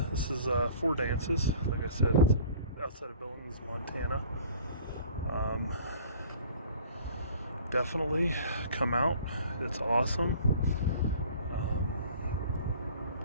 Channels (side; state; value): both; inverted; correlation -0.48